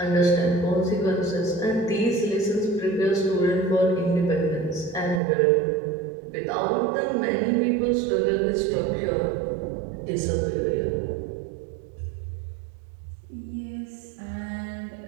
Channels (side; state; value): left; drops out; at 5.2 s